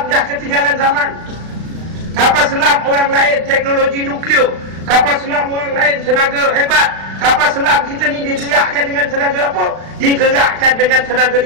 dah ketinggalan zaman. Kapal selam orang lain teknologi nuklear, kapal selam orang lain tenaga hebat. Kapal selam kita ni digerakkan dengan tenaga apa? Digerakkan dengan tenaga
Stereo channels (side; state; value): left; late; 36 ms